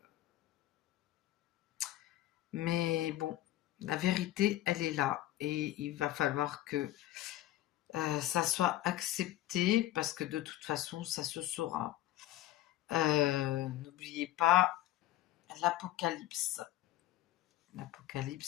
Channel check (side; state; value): right; quieter; 14.3 dB